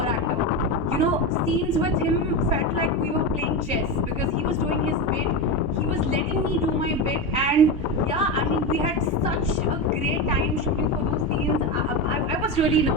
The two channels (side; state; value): both; normal; correlation 0.17